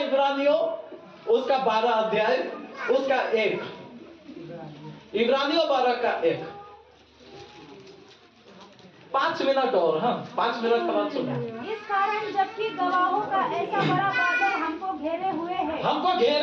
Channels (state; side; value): identical; both; correlation 1.00